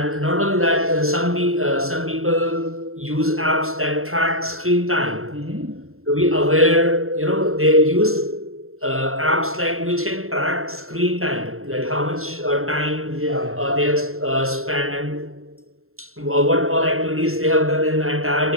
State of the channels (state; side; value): late; left; 0.62 ms